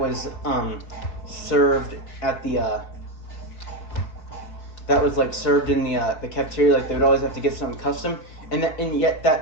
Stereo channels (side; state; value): right; late; 4.9 ms